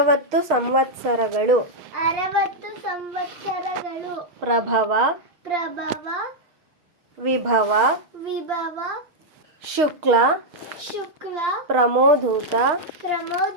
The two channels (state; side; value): late; left; 6.4 ms